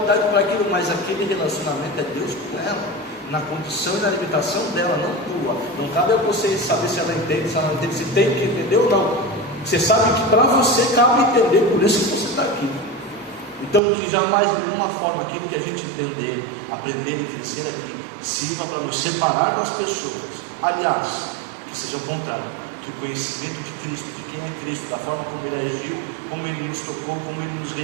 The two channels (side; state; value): left; drops out; at 13.8 s